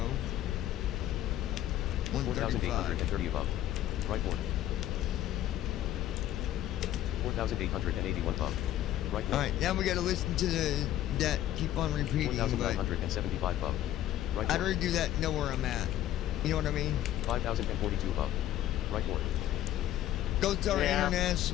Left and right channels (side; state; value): right; quieter; 12.8 dB